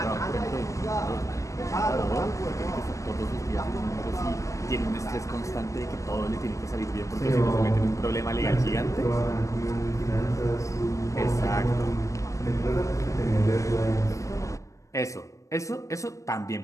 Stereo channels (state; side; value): late; right; 0.15 ms